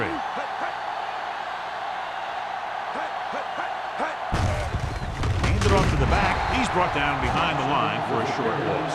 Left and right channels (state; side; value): identical; both; correlation 1.00